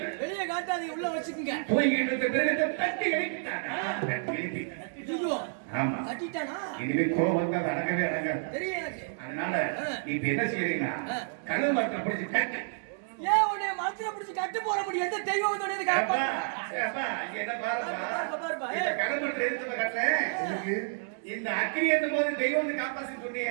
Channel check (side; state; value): left; silent; digital silence